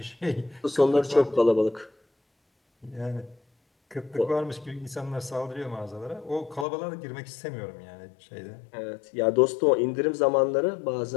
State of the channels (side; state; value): right; drops out; at 6.7 s